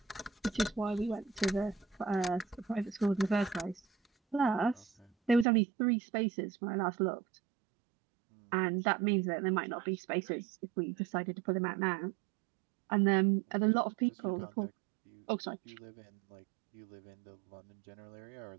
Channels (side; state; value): left; drops out; at 5.5 s